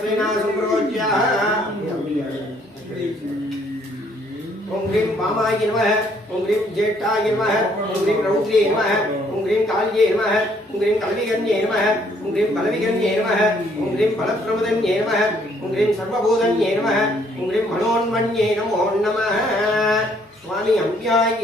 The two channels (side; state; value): both; normal; correlation 0.65